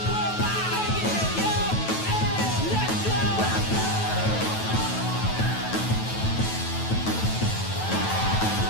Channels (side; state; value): right; late; 9.2 ms